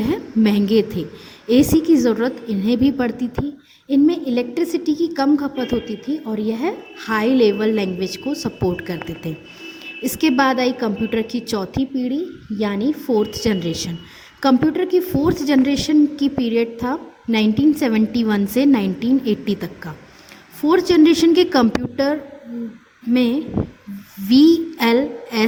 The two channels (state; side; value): identical; both; correlation 1.00